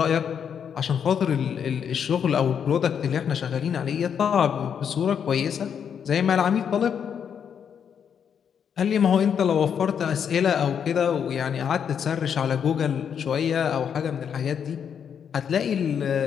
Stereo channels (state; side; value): quieter; right; 7.8 dB